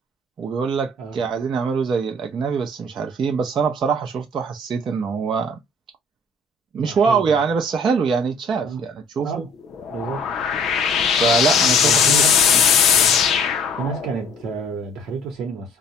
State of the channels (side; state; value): both; normal; correlation 0.54